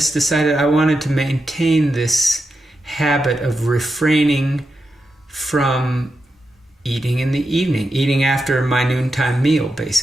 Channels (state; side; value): normal; both; correlation 0.88